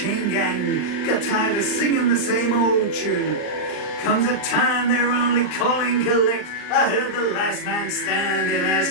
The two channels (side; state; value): right; late; 39 ms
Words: gang got tired of singing the same old tune. Comes a time they're only calling collect. I heard the last man standing ask